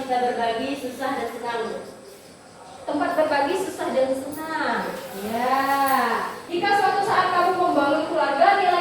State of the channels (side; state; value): both; identical; correlation 1.00